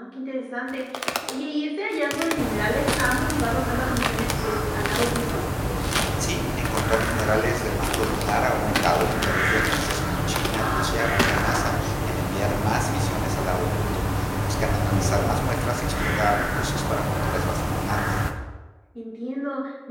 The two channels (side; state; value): both; identical; correlation 1.00